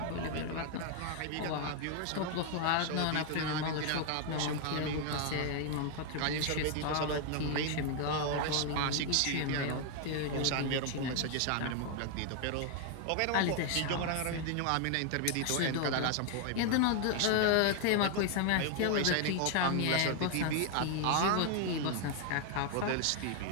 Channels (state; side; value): different; both; correlation 0.00